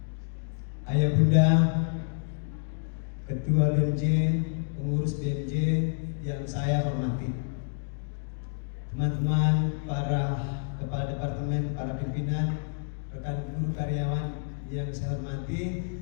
Ayah bunda, ketua BMJ, pengurus BMJ yang saya hormati, teman-teman para kepala departemen, para pimpinan, rekan guru karyawan yang saya hormati,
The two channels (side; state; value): right; silent; digital silence